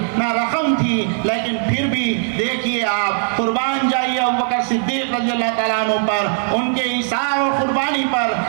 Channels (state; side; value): silent; left; 57 dB below the other